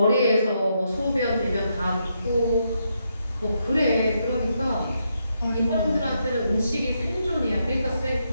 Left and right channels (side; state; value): both; inverted; correlation -0.80